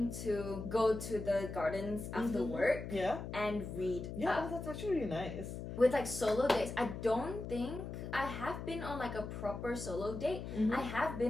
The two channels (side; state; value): left; noise; hum, 7 dB below the sound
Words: to go to the gardens after work and read. Yeah, that's actually really nice. With like solo dates. I don't think I have been on like a proper solo date. I have